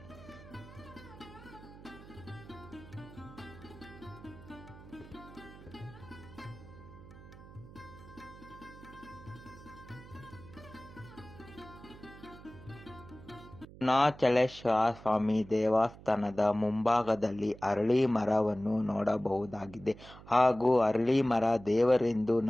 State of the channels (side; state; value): right; noise; hum, 18 dB below the sound